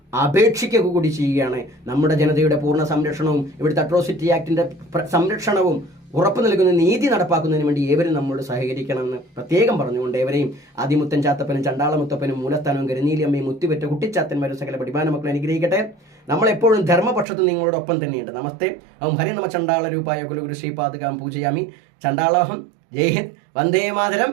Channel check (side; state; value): left; drops out; at 17.2 s